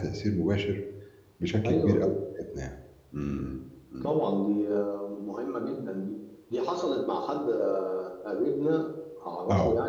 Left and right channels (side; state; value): both; identical; correlation 1.00